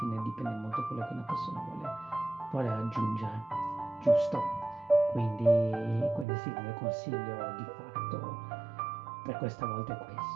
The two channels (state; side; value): drops out; left; at 6.2 s